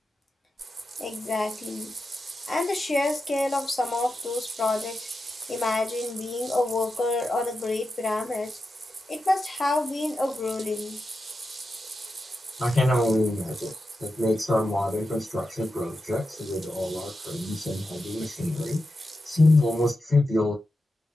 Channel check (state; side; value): normal; both; correlation 0.90